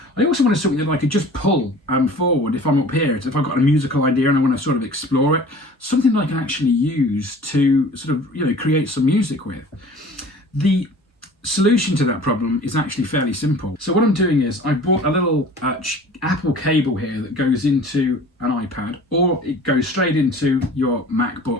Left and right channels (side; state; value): both; normal; correlation 0.45